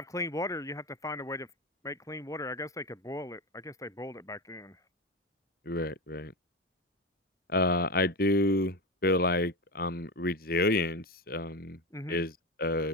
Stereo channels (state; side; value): normal; both; correlation 0.19